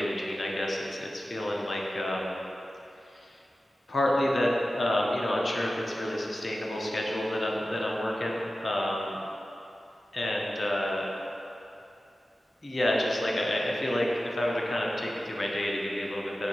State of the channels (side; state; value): both; normal; correlation 0.94